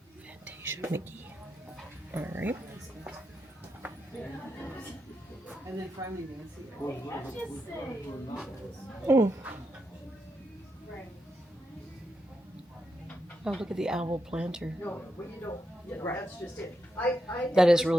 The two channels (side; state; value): both; normal; correlation 0.84